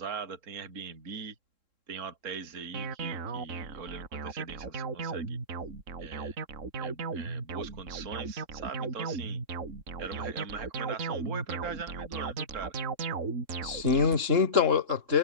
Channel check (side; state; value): left; late; 3.7 ms